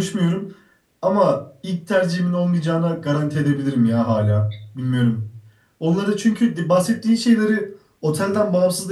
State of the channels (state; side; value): identical; both; correlation 1.00